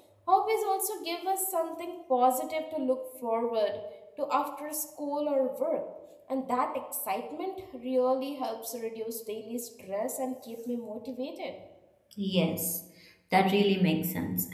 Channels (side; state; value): both; identical; correlation 1.00